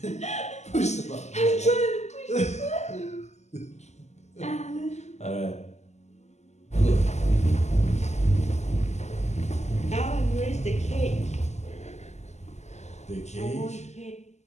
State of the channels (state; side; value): late; right; 0.33 ms